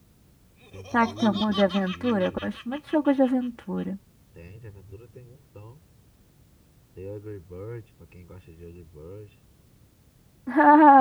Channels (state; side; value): identical; both; correlation 1.00